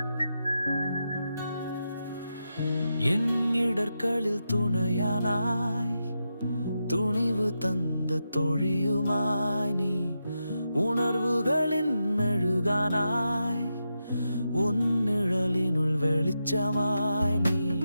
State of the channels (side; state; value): both; inverted; correlation -0.87